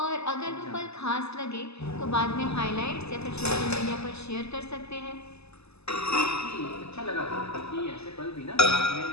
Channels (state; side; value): late; right; 0.79 ms